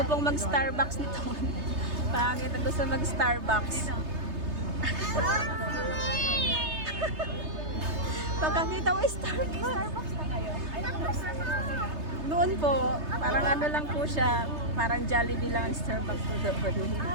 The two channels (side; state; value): left; late; 3.3 ms